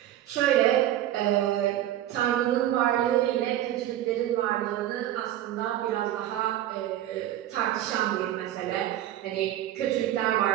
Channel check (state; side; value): quieter; left; 12.8 dB